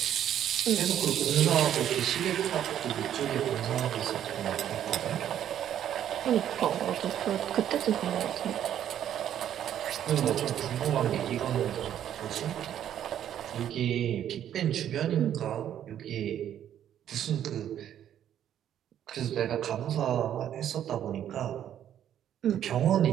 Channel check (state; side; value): quieter; left; 10.5 dB